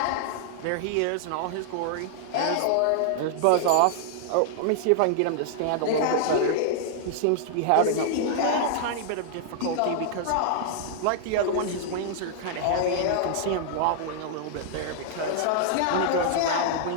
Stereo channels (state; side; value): different; both; correlation -0.01